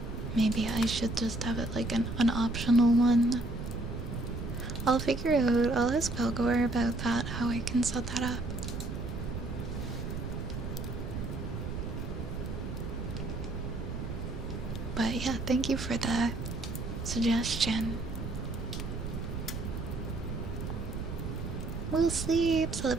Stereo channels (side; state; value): right; noise; rumble, 5 dB below the sound